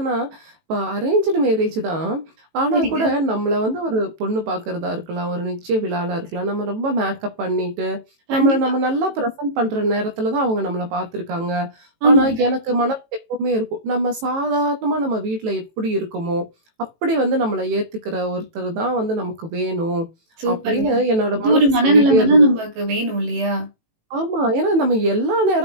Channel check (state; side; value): late; left; 18 ms